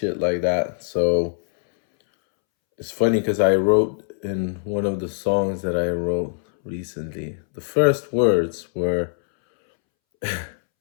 like that. So it's funny because I wrote in one of the songs that I wrote recently, the first words were,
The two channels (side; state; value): right; silent; 64 dB below the other